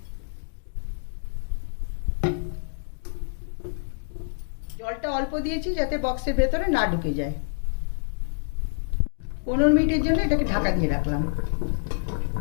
জলটা অল্প দিয়েছি যাতে বক্সের ভেতরে না ঢুকে যায়। 15 মিনিটের জন্য এটাকে ঢাকা দিয়ে রাখলাম।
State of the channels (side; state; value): right; silent; digital silence